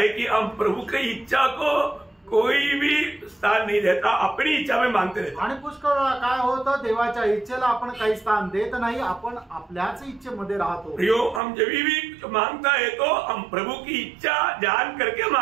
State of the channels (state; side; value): drops out; left; at 11.4 s